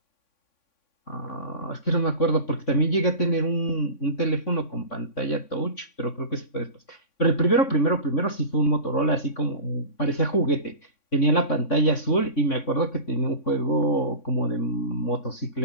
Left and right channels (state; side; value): late; right; 3.6 ms